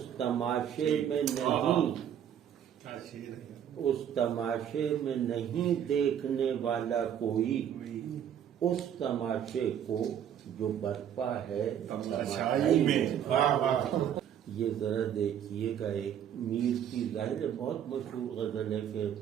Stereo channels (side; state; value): left; quieter; 9.4 dB